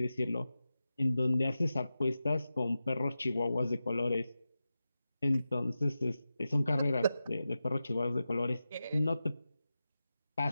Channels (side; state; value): both; inverted; correlation -0.93